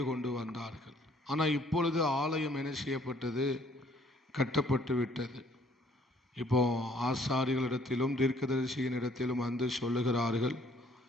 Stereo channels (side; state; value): both; normal; correlation 0.61